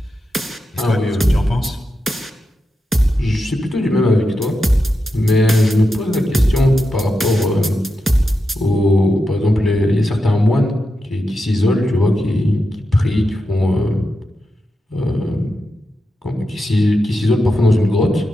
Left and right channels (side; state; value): both; normal; correlation 0.88